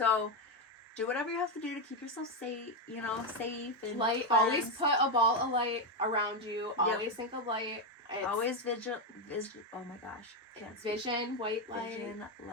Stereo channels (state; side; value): normal; both; correlation 0.06